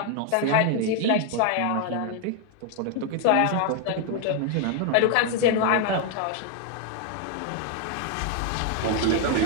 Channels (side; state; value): both; different; correlation 0.01